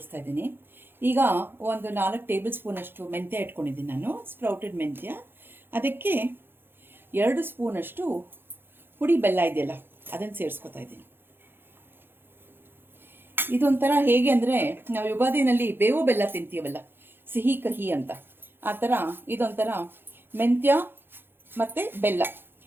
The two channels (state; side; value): late; left; 0.10 ms